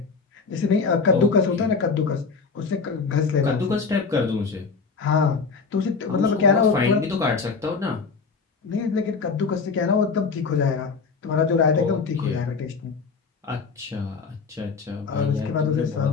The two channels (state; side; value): quieter; right; 4.9 dB